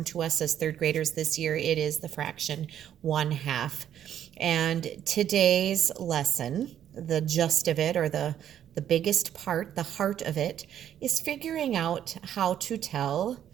to us as third graders this year, it is the fraction 1/2. And today's lesson, the gist of it, or the biggest part, the heart of it, is figuring out how to tell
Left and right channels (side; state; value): left; quieter; 10.3 dB